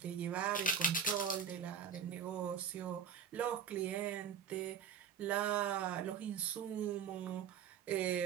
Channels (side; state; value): left; quieter; 7.5 dB